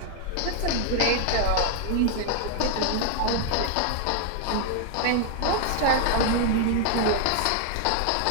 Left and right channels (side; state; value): both; different; correlation 0.00